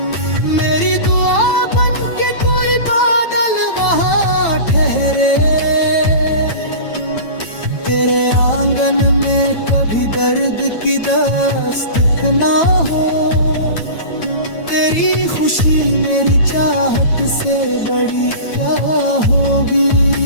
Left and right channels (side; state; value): right; late; 9.1 ms